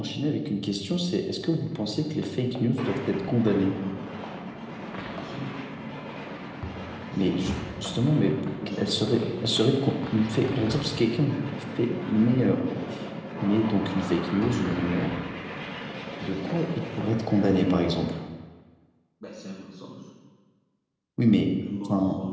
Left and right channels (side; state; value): both; identical; correlation 1.00